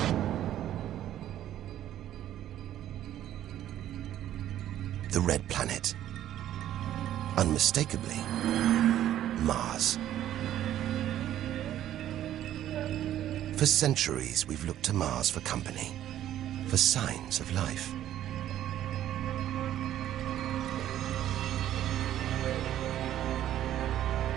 The red planet. Unmistakably, Mars. For centuries, we've looked to Mars for company, for signs of life.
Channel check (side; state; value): left; quieter; 12.1 dB